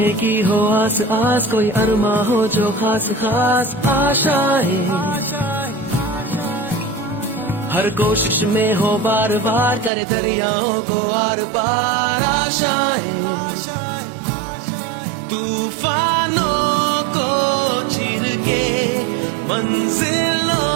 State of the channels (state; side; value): drops out; left; at 9.9 s